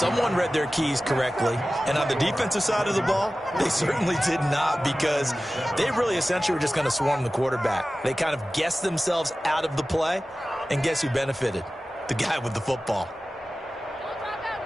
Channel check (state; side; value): normal; both; correlation 0.96